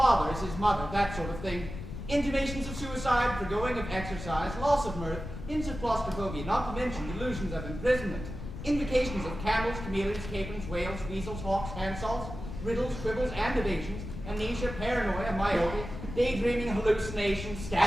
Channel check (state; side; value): noise; left; rumble, 9 dB below the sound